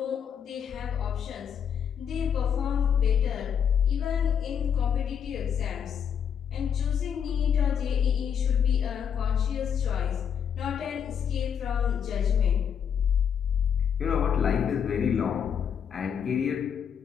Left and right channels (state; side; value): quieter; right; 7.9 dB